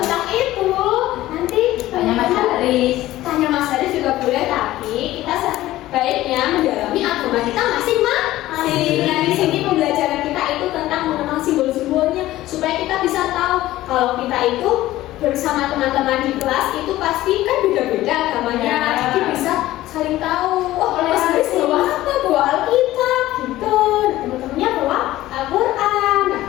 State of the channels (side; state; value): right; quieter; 15.7 dB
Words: itu nanti Tanya Mas Haris. Tanya Mas Haris juga boleh, tapi kita sebaiknya mendalami agama kita masing-masing. Nah, di sini pembelajaran kita itu tentang mengenal simbol-simbolnya supaya kita bisa tahu kalau kita itu bersama teman-teman di kelas itu pasti kan beda-beda agamanya. Jadi bisa saling tahu. Oh, Mas Haris bawa apa? Bawa Alkitab gitu. Nah, teman-temannya bawa Al-Quran. Nah,